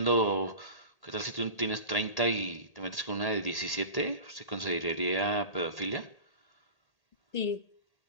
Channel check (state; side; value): late; right; 1.8 ms